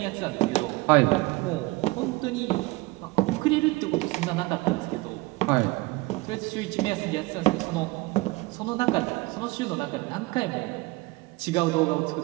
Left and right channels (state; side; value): quieter; left; 22.4 dB